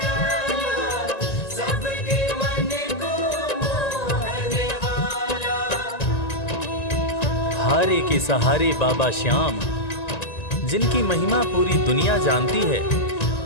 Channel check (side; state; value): right; late; 1.9 ms